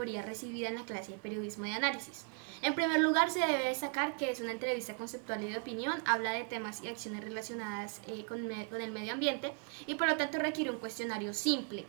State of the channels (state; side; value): quieter; left; 37.5 dB